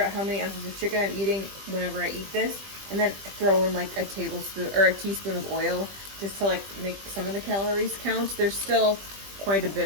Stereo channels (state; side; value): late; left; 20 ms